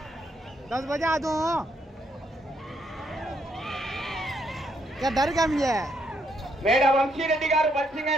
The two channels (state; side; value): normal; both; correlation 0.75